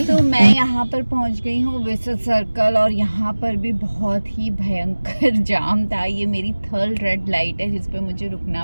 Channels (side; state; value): both; inverted; correlation -1.00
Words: मैं यहाँ पर पहुँच गई हूँ विसुत सर्कल, और यहाँ पर भी बहुत ही भयंकर जाम था। ये मेरी थर्ड रेड लाइट है जिस पे मुझे रुकना